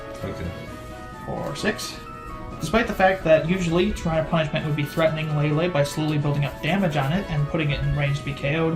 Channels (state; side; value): identical; both; correlation 1.00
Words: Okay. For 6. Despite the fact that usually Shrine of Punishment would be threatening Lele by slowly building up damage on it and putting it in range to be